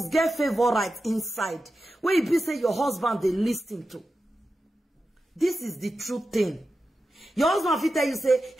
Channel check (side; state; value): both; normal; correlation 0.91